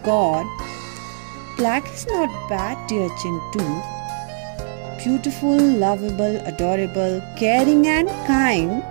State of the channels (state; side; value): silent; left; 65 dB below the other